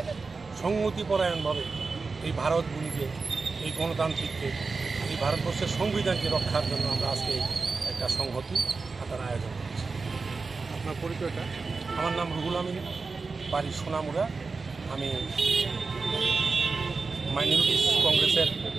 সংহতিপরায়ণভাবে এই ভারতভূমিকে, এই গণতান্ত্রিককে, এই ভারতবর্ষের সংবিধানকে রক্ষার জন্য আমরা আজকে একটা সংহতি হাতার আয়োজন করেছি। আপনার পরিচয়টা? আমার নাম রুহুল আমিন, বাড়ি সোনামুড়া। আমি মাইনরিটিস কংগ্রেসের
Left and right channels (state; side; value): quieter; left; 4.3 dB